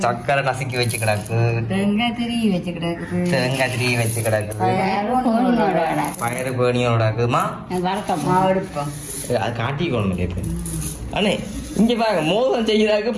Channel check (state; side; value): identical; both; correlation 1.00